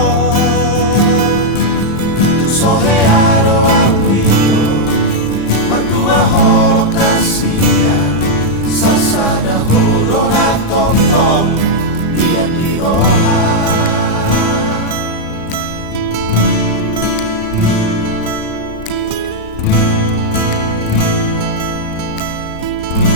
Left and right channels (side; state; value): right; late; 35 ms